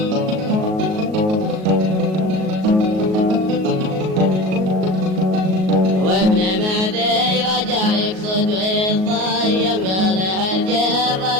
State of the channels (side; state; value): left; late; 38 ms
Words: وابن معدي رجع يقصد ويطيم قال